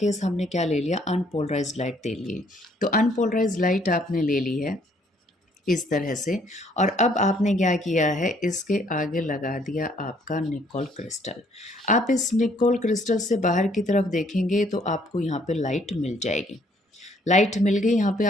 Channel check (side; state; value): both; normal; correlation 0.64